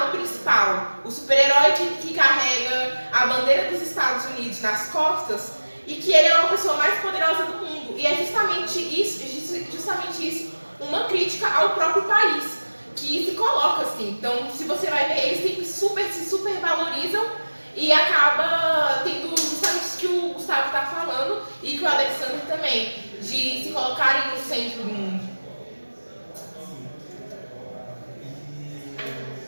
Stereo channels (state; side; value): inverted; both; correlation -1.00